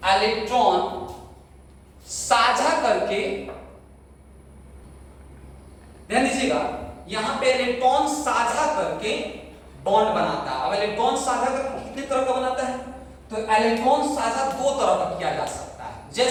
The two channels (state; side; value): identical; both; correlation 1.00